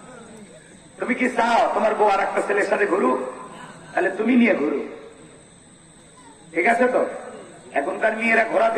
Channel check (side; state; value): both; identical; correlation 1.00